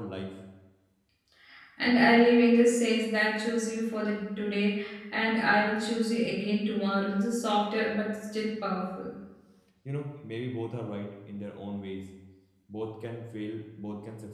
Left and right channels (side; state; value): both; identical; correlation 1.00